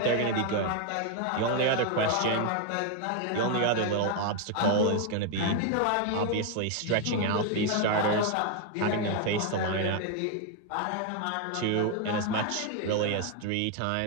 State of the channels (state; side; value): different; both; correlation 0.01